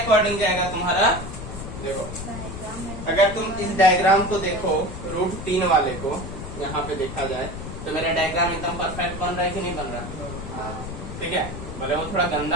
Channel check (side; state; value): left; noise; rumble, 8 dB below the sound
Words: जाएगा तुम्हारा। देखो, अगर तुम इस डायग्राम को देखो, √3 वाले को यहाँ पे देखा जाए तो मेरा डायग्राम एकदम परफेक्ट बन रहा है कि नहीं बन रहा? ठीक है, भले वो थोड़ा